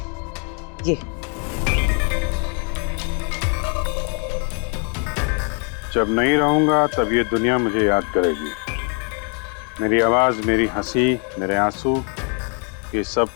ये जब नहीं रहूंगा तब ये दुनिया मुझे याद करेगी। मेरी आवाज, मेरी हंसी, मेरे आंसू, ये सब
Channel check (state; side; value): quieter; right; 39.5 dB